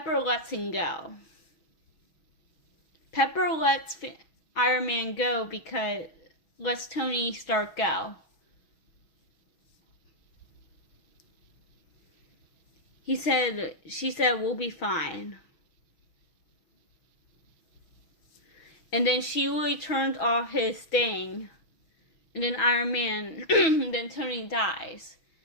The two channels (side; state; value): right; late; 6.2 ms